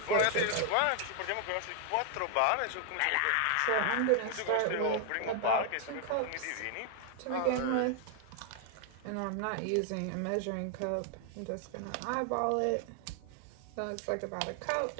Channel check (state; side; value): different; both; correlation 0.00